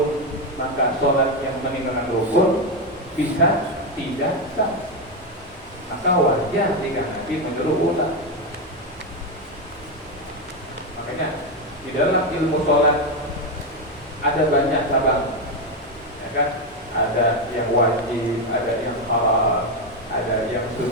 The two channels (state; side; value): normal; both; correlation 0.08